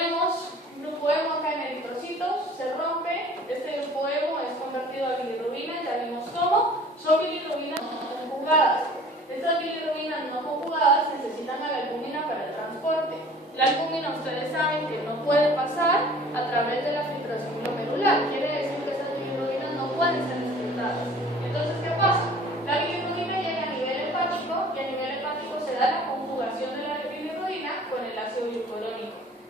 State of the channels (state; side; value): normal; both; correlation 0.48